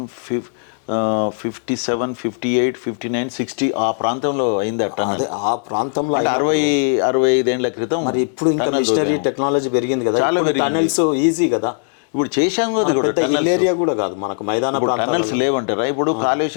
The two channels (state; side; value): silent; right; digital silence